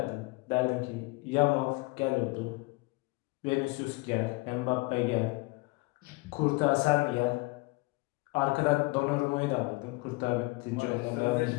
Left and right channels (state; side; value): quieter; right; 24.6 dB